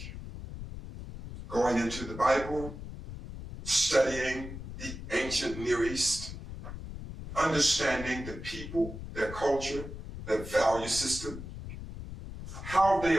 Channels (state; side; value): noise; left; rumble, 10 dB below the sound